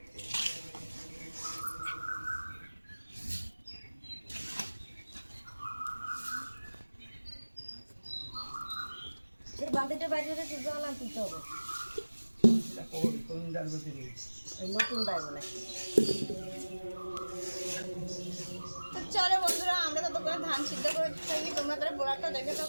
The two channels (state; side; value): inverted; both; correlation -1.00